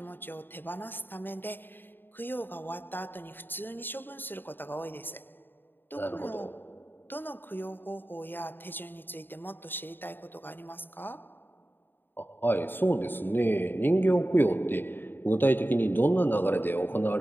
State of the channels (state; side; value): late; right; 0.095 ms